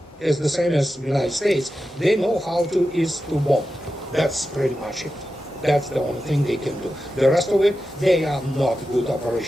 is the same as the United States. They know how is to bomb. That's pretty much it. That's the only thing they can do. The rest of it, they are not good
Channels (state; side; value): normal; both; correlation 0.91